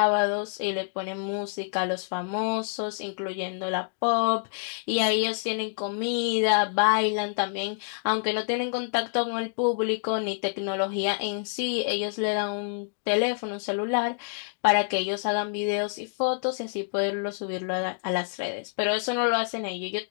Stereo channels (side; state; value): right; silent; digital silence